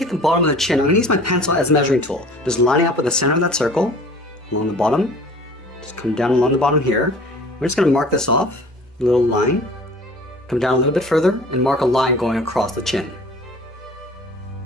the bottom of the chin, I'm going to use my pencil as a measuring tool. Just lining up with the center of that circle, along the bottom, just come down along the bottom here. We're just going to mark this off, a little line, come down a little bit further, and mark a line going across the chin.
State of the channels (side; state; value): both; normal; correlation 0.46